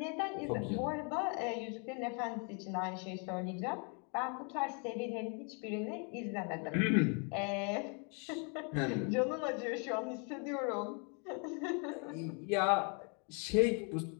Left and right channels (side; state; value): right; quieter; 36.8 dB